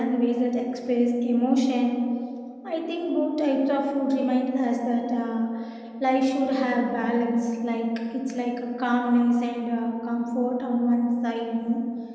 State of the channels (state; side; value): identical; both; correlation 1.00